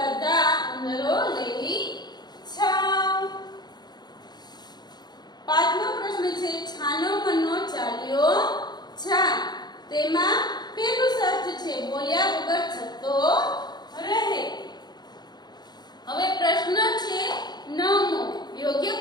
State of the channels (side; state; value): right; late; 0.20 ms